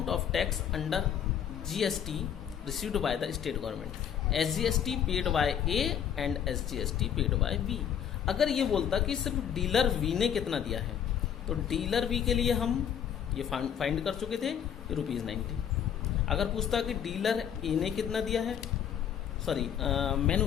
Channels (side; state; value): right; quieter; 8.9 dB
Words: of tax under GST received by the state government, SGST paid by A and SGST paid by B. अगर ये बोलता कि सिर्फ डीलर वी ने कितना दिया है, तो डीलर बी के लिए हम ये फाइंड कर चुके थे कि ₹90। अगर पूछता कि डीलर ए ने कितना दिया है, सॉरी